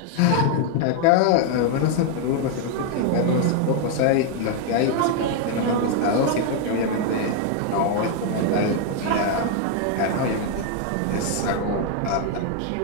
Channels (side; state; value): both; different; correlation 0.00